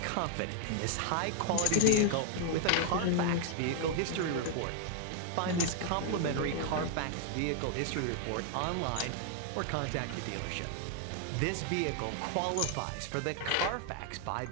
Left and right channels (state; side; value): different; both; correlation 0.00